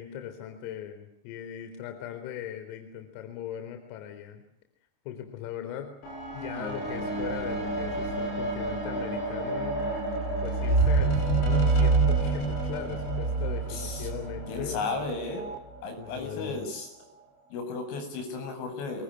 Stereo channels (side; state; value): right; late; 28 ms